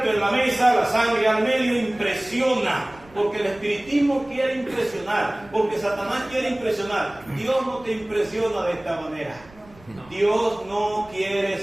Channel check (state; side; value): noise; right; rumble, 25 dB below the sound